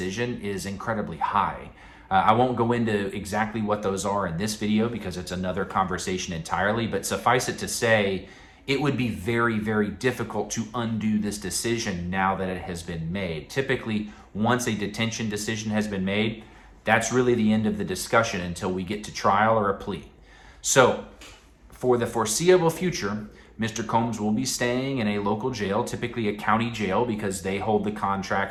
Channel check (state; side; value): identical; both; correlation 1.00